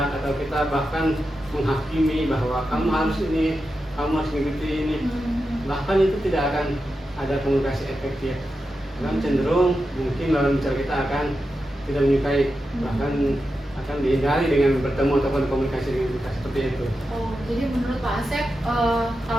atau kita bahkan menghakimi bahwa kamu harus ini, kamu harus mengikuti ini, bahkan itu tidak akan ada komunikasi efektif. Dan cenderung mungkin lawan bicara kita akan tidak menyukai, bahkan akan dihindari dengan bertemu ataupun komunikasi dengan kita seperti itu. Oh, jadi menurut Pak Asep,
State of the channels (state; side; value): normal; both; correlation 0.89